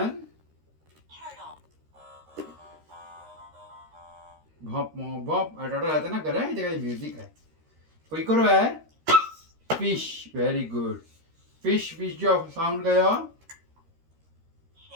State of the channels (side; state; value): left; late; 13 ms